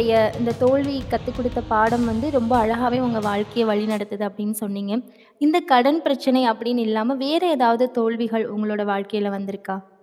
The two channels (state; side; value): identical; both; correlation 1.00